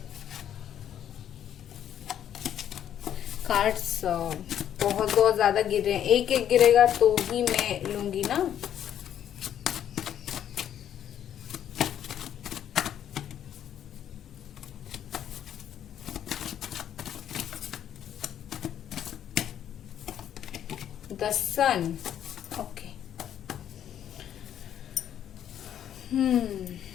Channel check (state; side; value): quieter; right; 10.1 dB